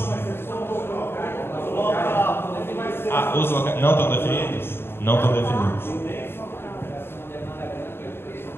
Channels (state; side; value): late; right; 0.11 ms